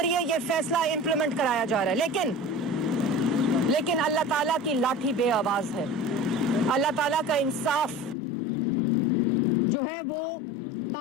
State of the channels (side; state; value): right; drops out; at 8.2 s